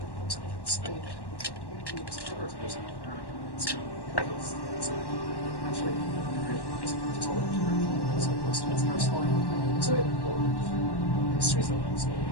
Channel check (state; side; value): late; right; 1.1 ms